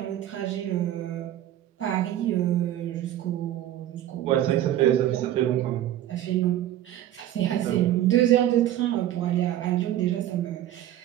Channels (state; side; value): quieter; left; 12.6 dB